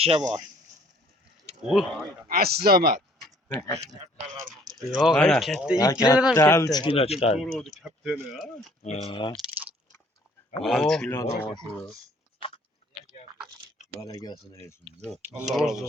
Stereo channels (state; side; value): normal; both; correlation 0.58